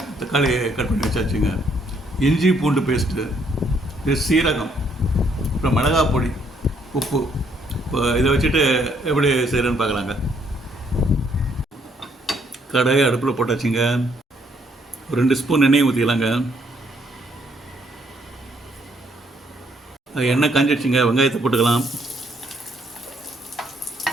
கட் பண்ணி வச்சாச்சுங்க. இஞ்சி பூண்டு பேஸ்ட்டு, சீரகம், அப்புறம் மிளகாய் பொடி, உப்பு. இப்போ இதை வச்சுட்டு எப்படி செய்கிறேன்னு பார்க்கலாங்க. கடாயை அடுப்பில் போட்டாச்சுங்க. ஒரு 2 ஸ்பூன் எண்ணெய் ஊற்றிக்கலாங்க. எண்ணெய் காஞ்சிடுச்சுங்க, வெங்காயத்தை போட்டுக்கலாம்.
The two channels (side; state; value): both; normal; correlation 0.69